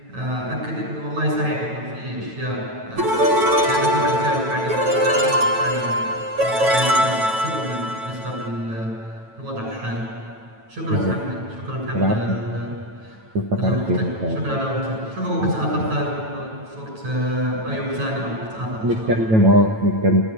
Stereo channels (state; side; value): late; left; 9.1 ms